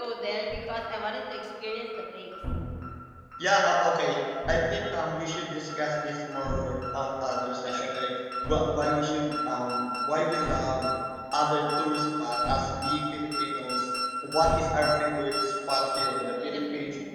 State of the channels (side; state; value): both; identical; correlation 1.00